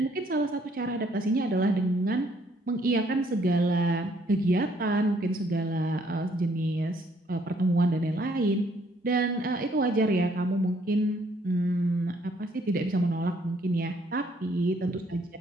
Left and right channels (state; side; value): normal; both; correlation 0.66